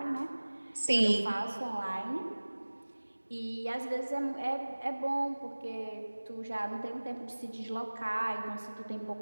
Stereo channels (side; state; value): both; inverted; correlation -1.00